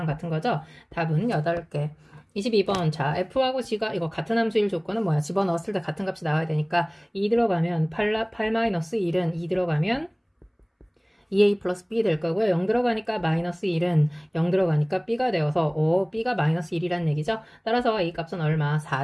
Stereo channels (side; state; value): both; identical; correlation 1.00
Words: 같은 거죠. 답은 8개. 22번 자 F하고 G가 이거 같은 함수일 조건은 뭐야? 집어넣었을 때 같은 값이 나와야 되니까 2 들어가면 8-1은 2 들어가면 2a 플러스 b 될 거고요. 0 들어가니까 마이너스 1은 0 들어가니까 b가 되어서 b가 마이너스 1이라는 얘기죠. 따라서 a 값은 얼마?